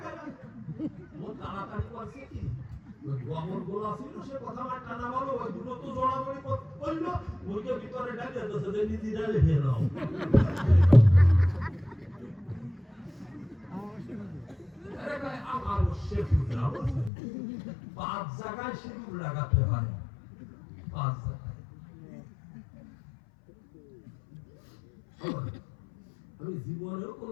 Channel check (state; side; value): drops out; right; at 17.1 s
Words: ও তাড়াতাড়ি করছে কি গোবর গোলা ছিল সে কথা আমার টানা বলো ওই দুটো তো জড়াজড়ি করলো ওইকে ভিতরে ডালে দিয়েছে যে নিজে ডালে খেয়ে নাও আমার পাঁচ জায়গায় সিঁদুর লাগাতে হয় পাঁচ জায়গায় আমি জীবনেও